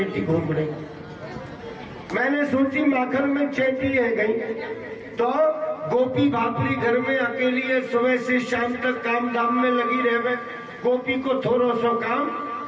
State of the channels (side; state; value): both; identical; correlation 1.00